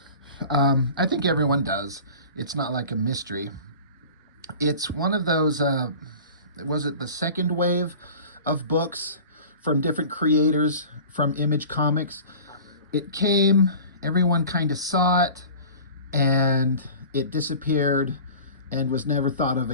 I think everyone does. It's not like a mystery. It's one of those, was it the second wave of books from different creators from Image Comics? It came, everyone kind of saw it, and it disappeared and was never thought of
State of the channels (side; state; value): both; inverted; correlation -0.40